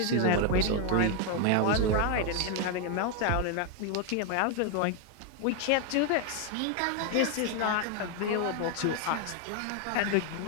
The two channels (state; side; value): different; both; correlation 0.01